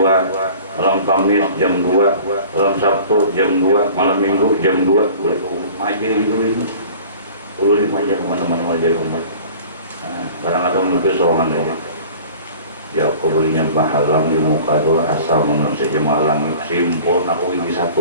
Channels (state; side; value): inverted; both; correlation -0.44